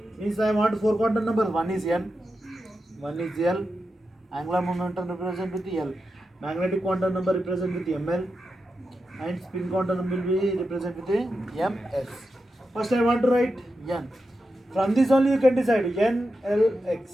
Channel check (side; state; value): both; normal; correlation 0.89